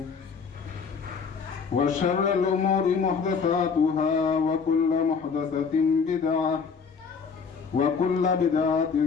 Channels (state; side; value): quieter; right; 5.6 dB